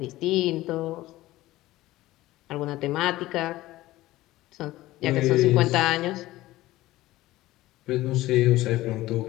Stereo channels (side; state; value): right; quieter; 16.9 dB